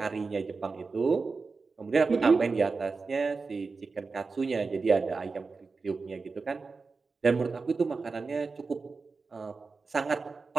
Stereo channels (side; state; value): left; quieter; 4.3 dB